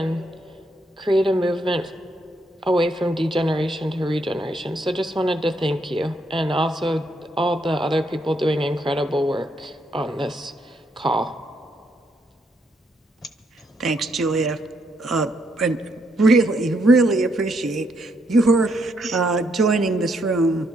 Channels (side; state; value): both; normal; correlation 0.75